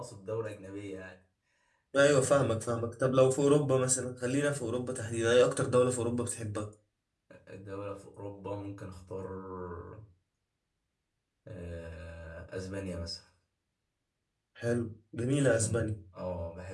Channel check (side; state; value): both; identical; correlation 1.00